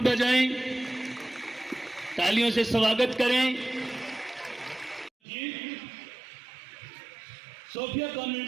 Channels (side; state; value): left; drops out; at 5.1 s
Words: बजाएं, तालियों से स्वागत करें। सोफिया